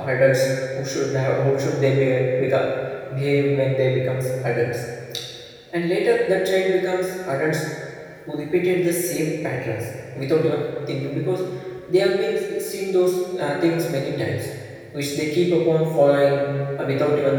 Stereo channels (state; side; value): identical; both; correlation 1.00